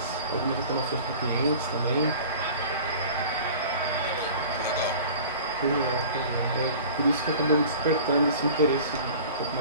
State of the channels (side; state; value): both; inverted; correlation -0.42